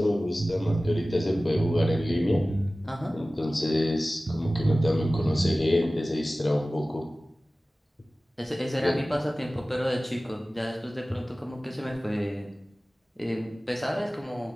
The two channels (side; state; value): both; normal; correlation 0.97